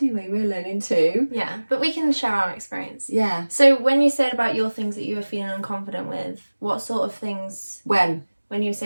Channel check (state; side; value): inverted; both; correlation -1.00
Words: we? We're learning too. Yeah, but we can share our experience. Yeah. So when you said about your things that you were feeling unconfident with, what sort of things? When you were